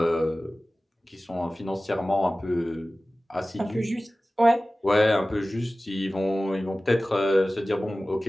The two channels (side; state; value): both; normal; correlation 0.97